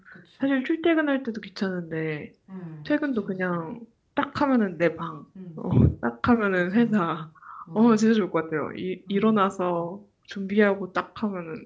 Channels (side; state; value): both; identical; correlation 1.00